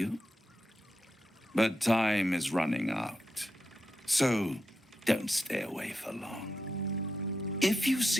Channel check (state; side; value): normal; both; correlation 0.86